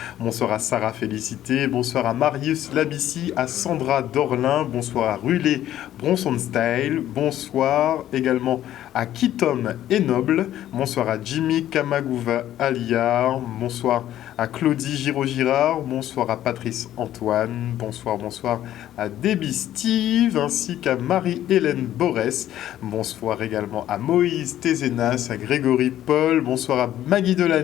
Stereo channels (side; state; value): right; quieter; 12.4 dB